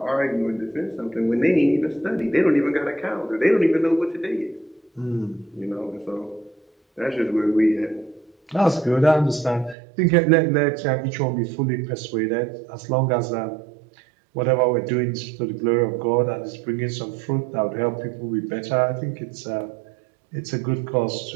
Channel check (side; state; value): left; drops out; at 9.8 s